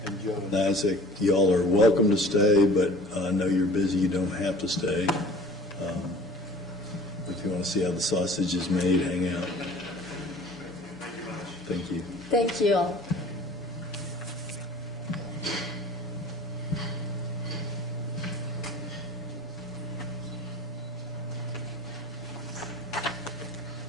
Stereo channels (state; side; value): normal; both; correlation 0.46